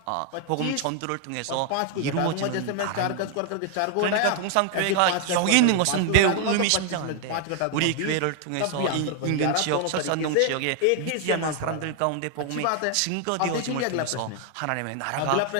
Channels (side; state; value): both; different; correlation 0.00